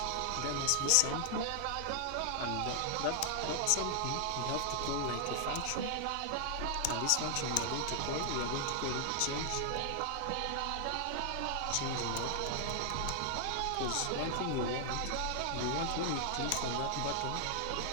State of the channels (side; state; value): both; different; correlation 0.00